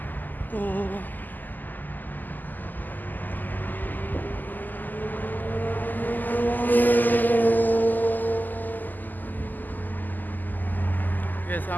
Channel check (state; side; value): late; right; 0.086 ms